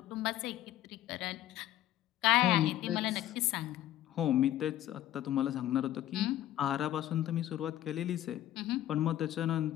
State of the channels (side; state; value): right; quieter; 13.1 dB